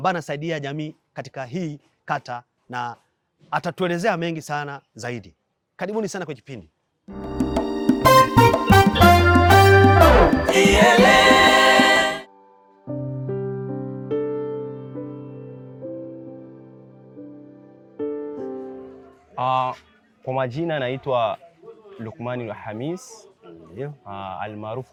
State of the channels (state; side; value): identical; both; correlation 1.00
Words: anasaidia jamii katika hii kata na atatuelezea mengi sana zaidi. Karibuni sana kwa kipindi. Kwa majina naitwa Lukmani Hamis, almaarufu